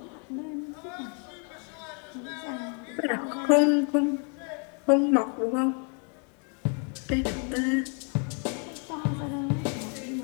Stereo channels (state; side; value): quieter; right; 39.7 dB